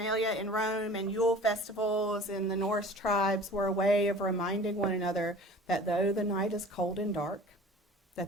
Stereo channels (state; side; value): normal; both; correlation 0.44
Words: in Rome and Yule festivals in the Norse tribes were a way of reminding one another that though the night is cold and dark,